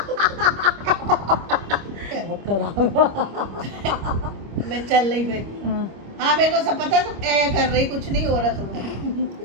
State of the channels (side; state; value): left; late; 25 ms